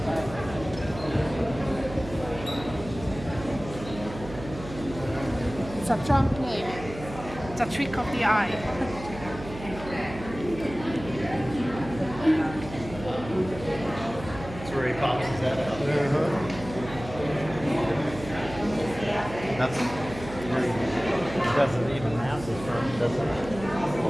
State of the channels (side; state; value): right; noise; hum, 13 dB below the sound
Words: It's a trump play. It's a trick of the eye. That's where he pops his head out. That's where he doesn't even have the front, does